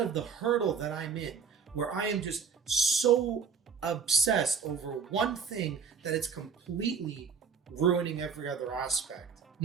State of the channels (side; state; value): left; quieter; 6.1 dB